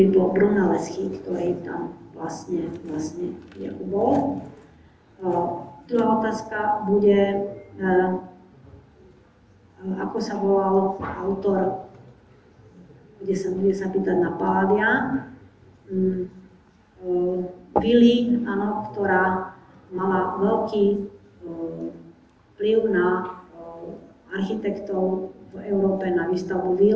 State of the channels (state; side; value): identical; both; correlation 1.00